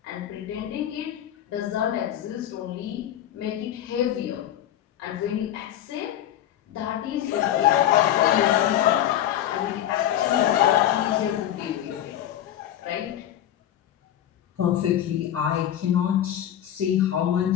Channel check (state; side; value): quieter; right; 11.4 dB